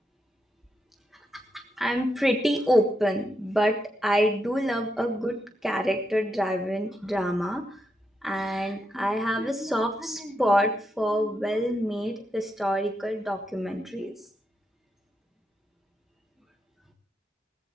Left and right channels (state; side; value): normal; both; correlation 0.83